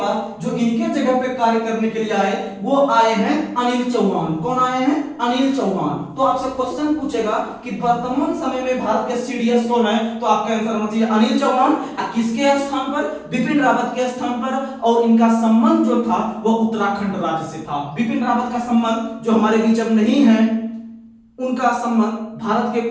जो इनके जगह पे कार्य करने के लिए आए वो आए हैं अनिल चौहान। कौन आए हैं? अनिल चौहान। तो आपसे क्वेश्चन पूछेगा कि वर्तमान समय में भारत के सीडीएस कौन है, तो आपका आंसर होना चाहिए अनिल चौहान। किसके स्थान पर? बिपिन रावत के स्थान पर। और इनका संबंध जो था वो उत्तराखंड राज्य से था। बिपिन रावत का संबंध जो हमारे बीच अब नहीं है, उनका संबंध भारत के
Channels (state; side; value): identical; both; correlation 1.00